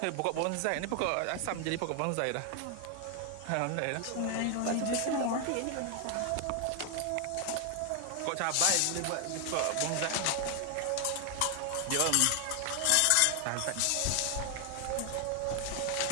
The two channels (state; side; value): different; both; correlation 0.00